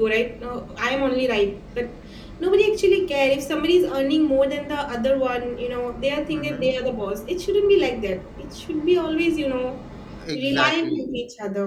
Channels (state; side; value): identical; both; correlation 1.00